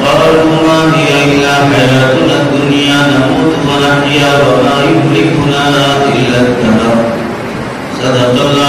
ما هي إلا حياتنا الدنيا نموت ونحيا وما يهلكنا إلا الدهر صدق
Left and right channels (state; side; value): identical; both; correlation 1.00